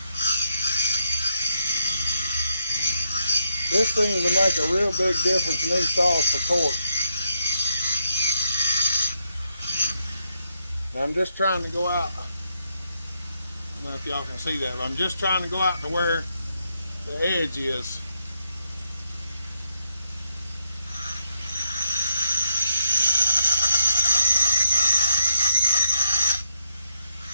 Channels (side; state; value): both; inverted; correlation -0.80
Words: This seems to make a real big difference in these saws for torque. Now I'm just trying to go out. I don't know if y'all can see that, but I'm just trying to go out to where the edge is.